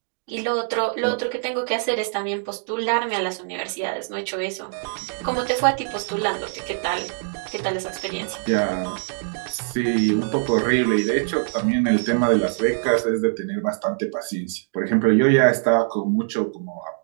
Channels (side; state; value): left; silent; 63 dB below the other